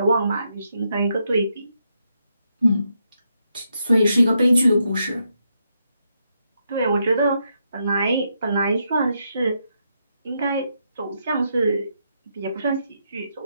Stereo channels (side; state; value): both; inverted; correlation -0.80